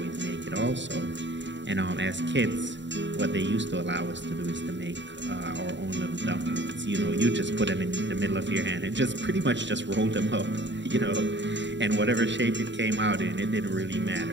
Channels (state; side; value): late; left; 0.53 ms